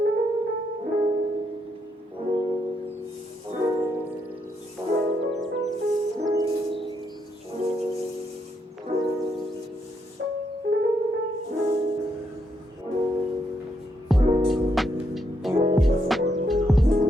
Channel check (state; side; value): normal; both; correlation 0.77